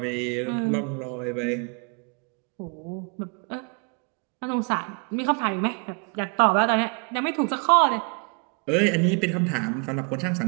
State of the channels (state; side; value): quieter; left; 36.7 dB